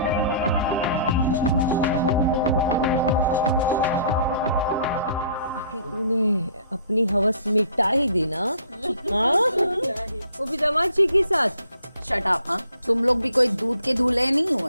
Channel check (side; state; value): both; inverted; correlation -0.54